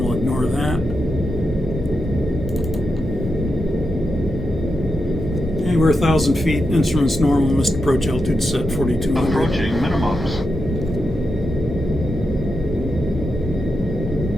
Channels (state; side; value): normal; both; correlation 0.86